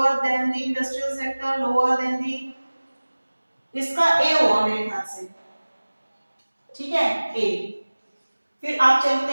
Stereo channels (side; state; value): both; inverted; correlation -1.00